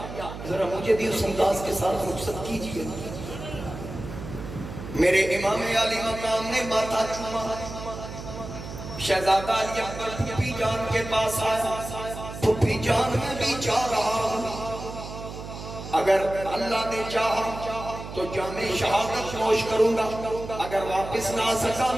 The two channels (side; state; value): right; noise; hum, 10 dB below the sound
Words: ذرا مجھے بھی اس انداز کے ساتھ رخصت کیجئے۔ میرے امام علی مقام نے ماتھا چوما، شہزادہ علی اکبر پھوپھی جان کے پاس آیا، پھوپھی جان میں بھی چاہ رہا ہوں، اگر اللہ نے چاہا تو جامع شہادت نوش کروں گا، اگر واپس نہ سکا